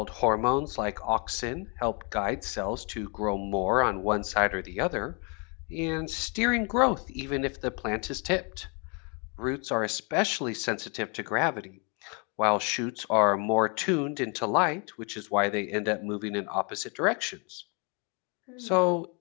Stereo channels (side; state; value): right; quieter; 34.6 dB